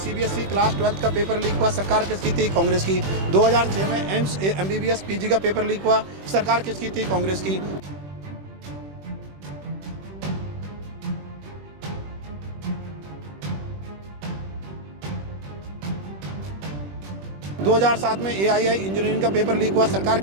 क्लास 12 का पेपर लीक हुआ, सरकार किसकी थी? कांग्रेस की। 2006 में एम्स एमबीबीएस पीजी का पेपर लीक हुआ, सरकार किसकी थी? कांग्रेस की। 2007 में एआईआई इंजीनियरिंग का पेपर लीक हुआ, सरकार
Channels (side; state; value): left; late; 21 ms